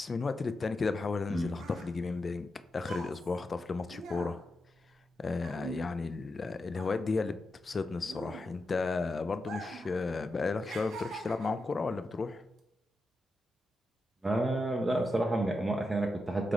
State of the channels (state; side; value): normal; both; correlation 0.88